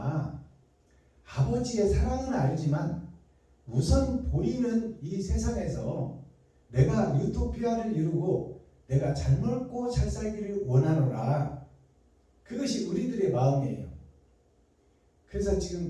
아버지의 사랑은 알지만 우선 보이는 이 세상에서 내가 유토피아를 이루고 내가 잘 먹고 잘 살기를 원하노라. 그것이 우리들의 마음이에요. 그래서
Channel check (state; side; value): identical; both; correlation 1.00